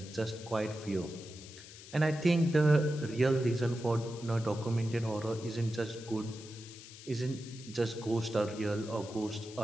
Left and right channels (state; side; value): noise; left; hiss, 16 dB below the sound